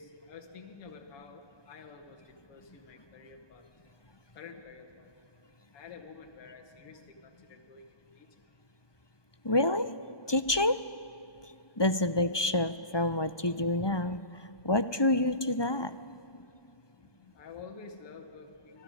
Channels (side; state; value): right; late; 1.2 ms